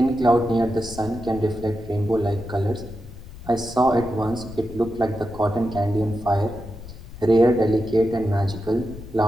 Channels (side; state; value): left; noise; rumble, 15 dB below the sound